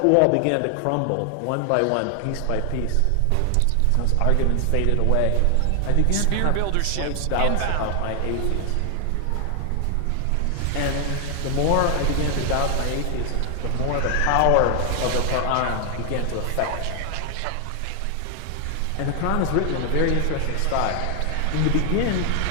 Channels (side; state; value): both; different; correlation 0.00